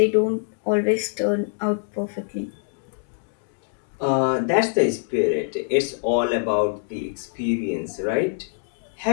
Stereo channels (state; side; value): silent; right; digital silence